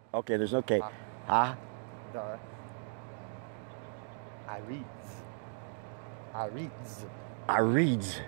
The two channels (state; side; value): silent; left; 54 dB below the other